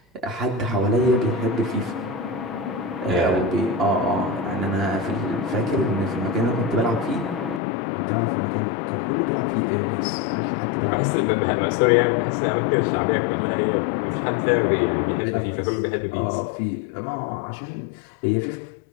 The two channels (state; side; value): drops out; right; at 7.6 s